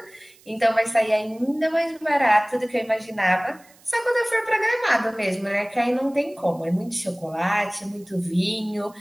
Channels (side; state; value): right; noise; hiss, 28 dB below the sound